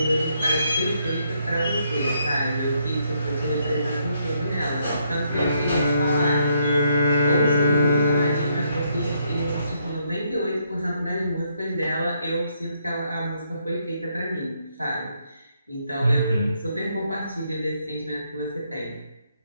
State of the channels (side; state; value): both; inverted; correlation -0.74